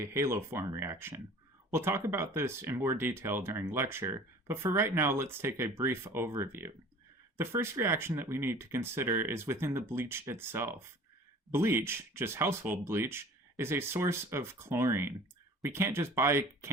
haloform reaction. We'll talk about this in more detail during lecture, but for right now, let's take a brief overview. The first reaction that we need to consider is within the bleach itself. Bleach, just household bleach, is a source of chlorine. We can't just buy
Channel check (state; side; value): normal; both; correlation 0.45